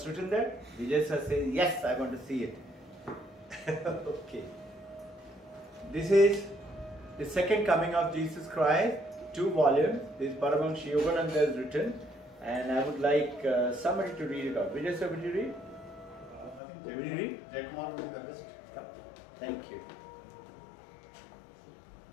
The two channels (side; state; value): right; drops out; at 16.6 s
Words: written there? Vijay sir says, yes, I want to see it. Okay. This is the second coming of Jesus Christ, 2 volumes. This Paramahansa Yogananda has written, and I would like somebody to read it out. Vijay sir, will you read? I think Will you read? Jayakumar will be the best. Yeah. Thank you.